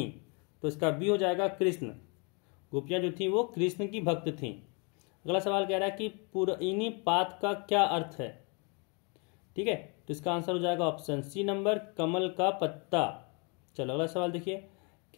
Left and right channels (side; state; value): right; quieter; 33.9 dB